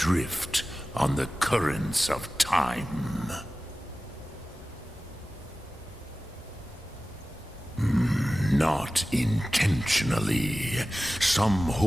on the currents of time. Not intentionally. Some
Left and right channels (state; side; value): normal; both; correlation 0.96